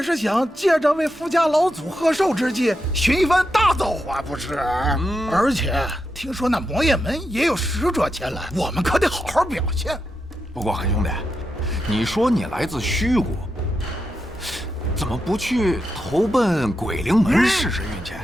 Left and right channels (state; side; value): normal; both; correlation 0.86